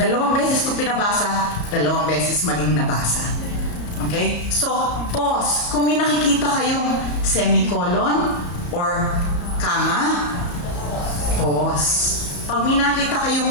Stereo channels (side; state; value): right; late; 34 ms